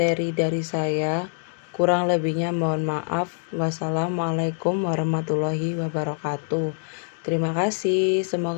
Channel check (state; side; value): silent; right; digital silence